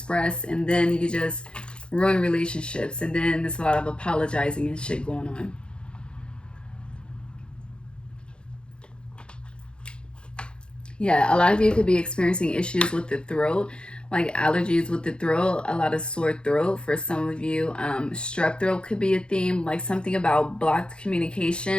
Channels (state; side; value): late; right; 0.053 ms